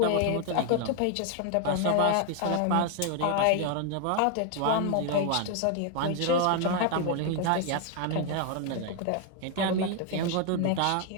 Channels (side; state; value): both; different; correlation 0.00